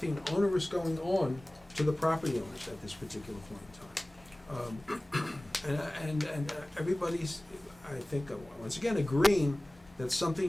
onerous going on to the property owners at this particular point in time. And everybody's, I think, once again, agreeing that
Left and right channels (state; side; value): normal; both; correlation 0.98